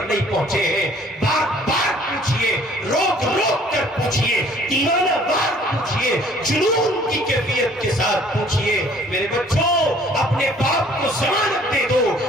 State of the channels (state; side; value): normal; both; correlation 0.56